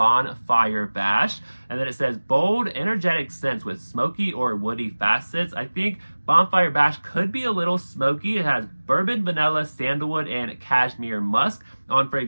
Bash. And then it says bold, energetic scents with smoky or woody facets. I think Bonfire Bash could be a little smoky. It has bourbon, vanilla, sandalwood, and cashmere musk. On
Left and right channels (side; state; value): both; inverted; correlation -1.00